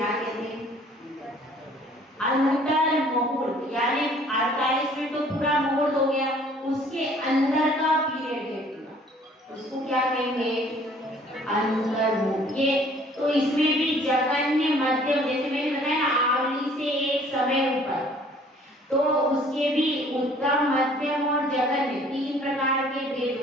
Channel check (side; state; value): both; normal; correlation 0.56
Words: कहते हैं? अंतर मुहूर्त। यानी 48 मिनट तो पूरा मुहूर्त हो गया, उसके अंदर का पीरियड है पूरा, उसको क्या कहेंगे? अंतर मुहूर्त। ये तो इसमें भी जगन्य मध्यम, जैसे मैंने बताया आवली से एक समय ऊपर, तो उसके भी उत्तम मध्यम और जगन्य तीन प्रकार के भेद